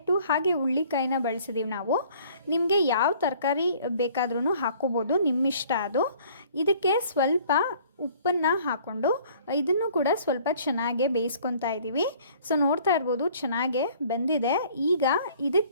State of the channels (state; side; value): inverted; both; correlation -0.55